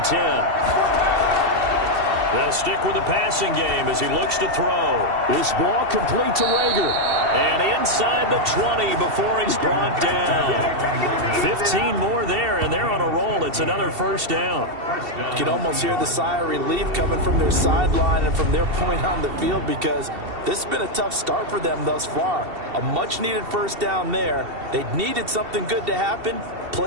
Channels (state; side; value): late; left; 2.7 ms